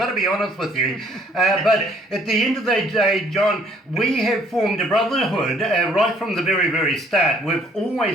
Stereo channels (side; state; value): both; normal; correlation 0.61